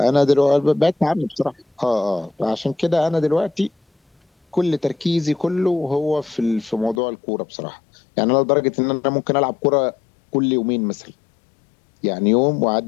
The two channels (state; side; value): drops out; right; at 7.0 s